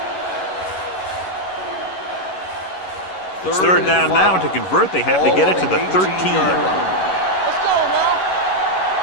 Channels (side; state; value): right; late; 11 ms